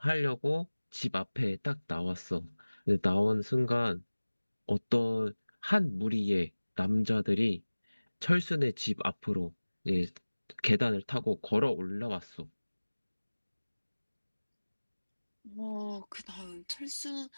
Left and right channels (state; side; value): inverted; both; correlation -1.00